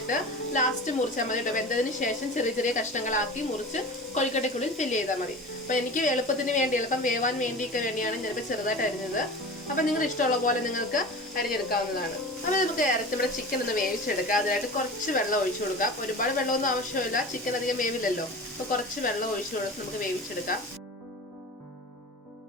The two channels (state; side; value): normal; both; correlation 0.34